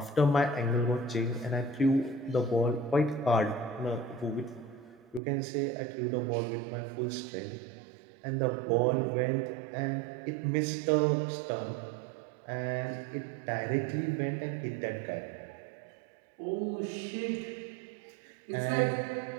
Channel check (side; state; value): left; drops out; at 5.2 s